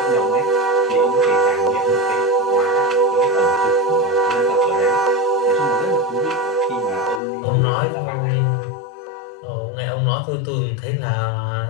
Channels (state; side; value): drops out; right; at 7.2 s